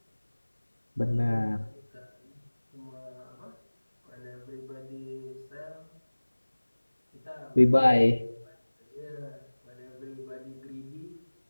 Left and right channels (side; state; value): both; inverted; correlation -1.00